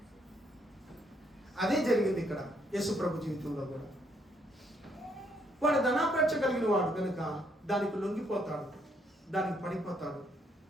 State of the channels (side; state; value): both; normal; correlation 0.72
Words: అదే జరిగింది ఇక్కడ యేసు ప్రభు జీవితంలో కూడా. వాడు ధనాపేక్ష కలిగిన వాడు కనుక దానికి లొంగిపోతాడు, దానికి పడిపోతాడు,